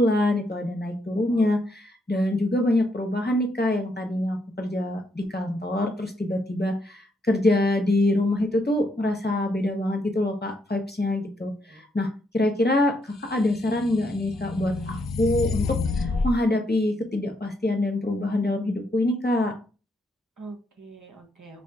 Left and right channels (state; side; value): normal; both; correlation 0.76